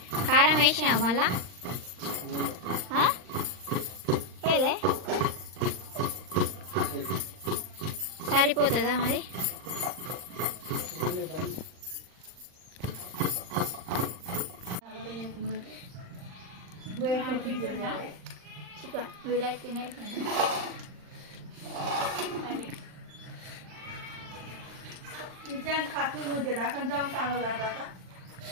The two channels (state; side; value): late; left; 39 ms